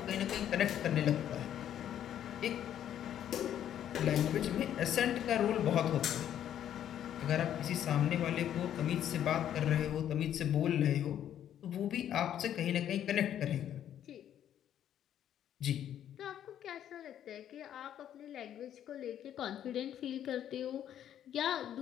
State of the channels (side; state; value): right; quieter; 10.5 dB